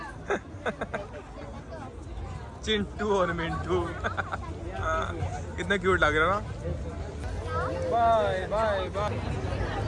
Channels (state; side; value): identical; both; correlation 1.00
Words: चिंटू और मिंटू। कितना क्यूट लग रहा ना। Bye bye bye.